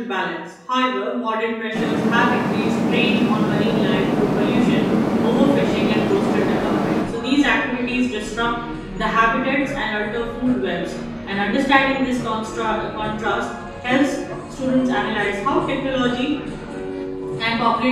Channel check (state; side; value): identical; both; correlation 1.00